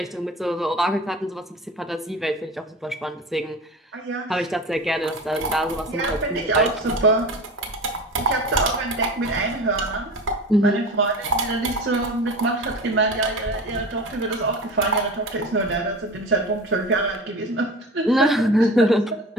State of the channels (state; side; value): normal; both; correlation 0.33